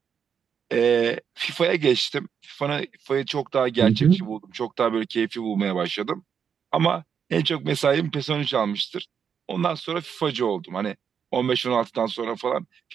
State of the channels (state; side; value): quieter; left; 7.3 dB